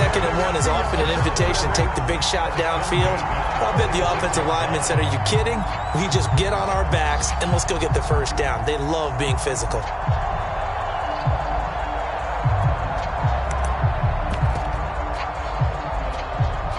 and 1 is often an invitation to take the big shot downfield. I bet the offensive lineman said, are you kidding? We just get on our backs and let's go get the first down. They love being physical.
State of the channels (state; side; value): identical; both; correlation 1.00